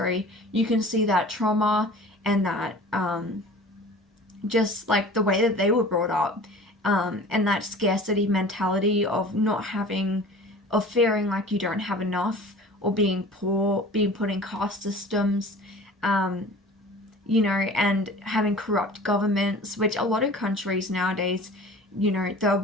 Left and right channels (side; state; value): both; normal; correlation 0.42